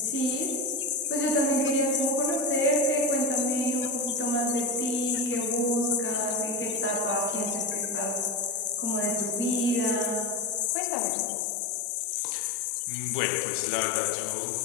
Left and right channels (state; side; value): drops out; right; at 10.7 s